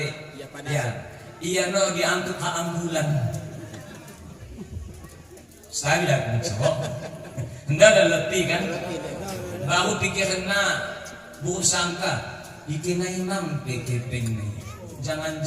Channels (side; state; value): both; identical; correlation 1.00